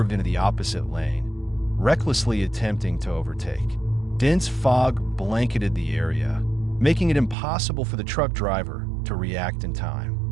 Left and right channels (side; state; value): left; drops out; at 7.4 s